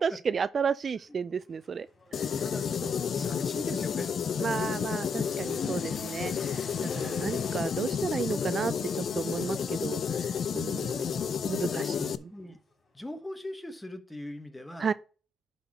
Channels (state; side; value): normal; both; correlation 0.76